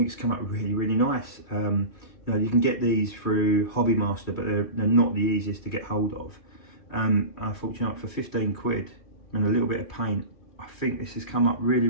it's come up really, really nice. You know, you can get these through Hobby Master, but they're not the easiest to get hold of. Unfortunately, for 15 quid and a little bit of paint, I think this has come up really,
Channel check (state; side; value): late; right; 3.7 ms